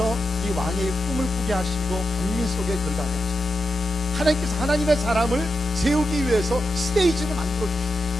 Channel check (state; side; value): normal; both; correlation 0.89